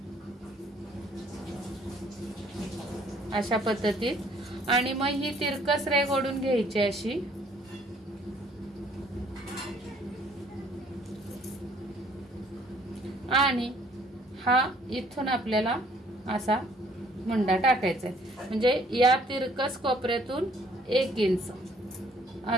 अशा पद्धतीत। आणि मग ही तिरकस रेघ ओढून घ्यायची अशी। आणि हा इथून आपल्याला असा मुंडा टाकायचा आहे, म्हणजे या तिरकस कोपऱ्यातून 1 इंच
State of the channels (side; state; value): both; normal; correlation 0.61